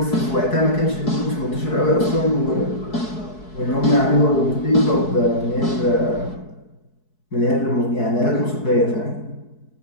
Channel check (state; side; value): late; right; 4.7 ms